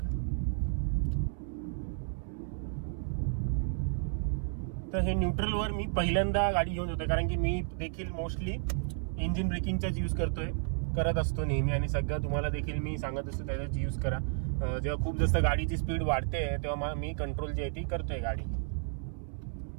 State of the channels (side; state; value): left; silent; 56 dB below the other